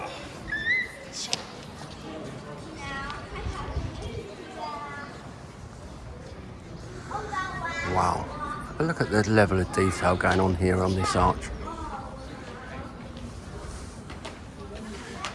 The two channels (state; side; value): identical; both; correlation 1.00